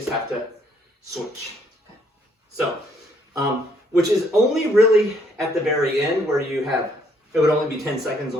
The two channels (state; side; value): normal; both; correlation 0.67